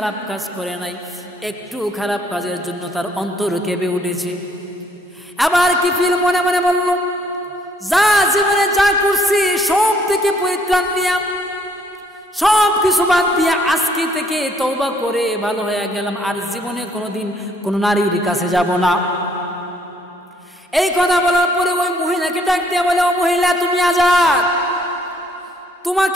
কাজ করে নাই, একটু খারাপ কাজের জন্য তার অন্তর কেঁপে উঠেছে। আবার কিফিল মনে মনে বলল, যা জীবনে যা করছি সব থেকে পরিত্রাণ নিয়া, সব কিছু বাদ দিয়া আজকে থেকে তওবা করে ভালো হয়ে গেলাম, আর জীবনে কোনোদিন কোন নারীর কাছে যাব না। এই কথা বলার পরে ওই মহিলাকে ডাক দিয়ে বলে, ও মহিলা, তুমি আজাদ,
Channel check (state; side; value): normal; both; correlation 0.65